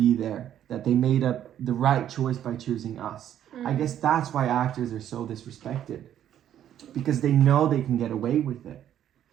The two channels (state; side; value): quieter; left; 10.7 dB